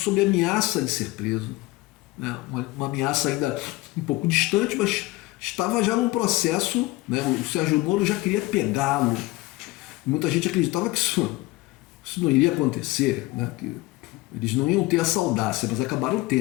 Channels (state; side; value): quieter; right; 19.9 dB